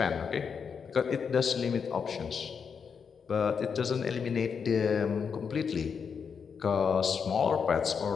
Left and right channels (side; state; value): right; quieter; 6.3 dB